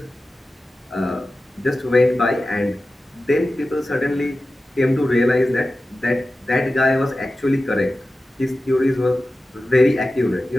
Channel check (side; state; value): both; normal; correlation 0.94